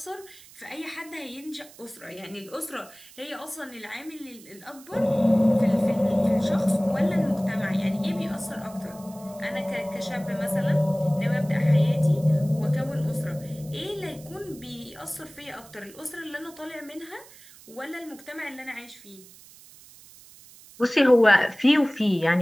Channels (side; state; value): right; noise; hiss, 22 dB below the sound